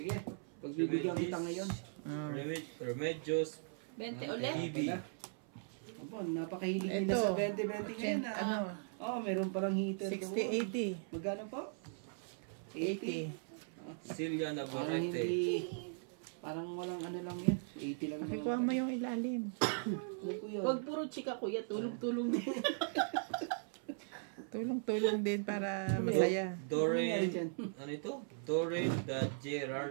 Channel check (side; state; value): left; silent; 52 dB below the other